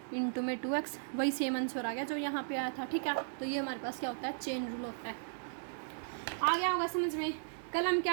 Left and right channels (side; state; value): left; silent; digital silence